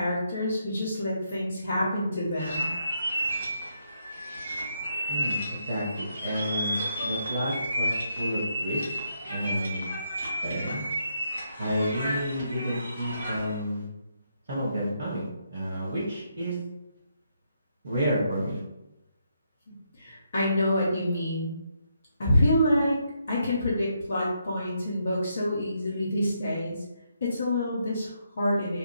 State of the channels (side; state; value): both; inverted; correlation -0.78